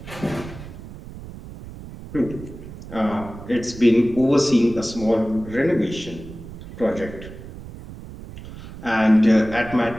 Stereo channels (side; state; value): right; noise; rumble, 14 dB below the sound